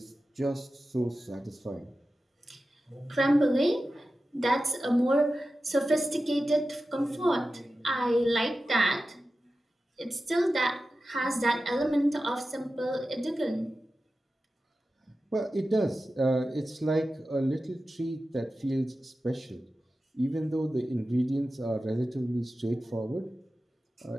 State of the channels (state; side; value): normal; both; correlation 0.94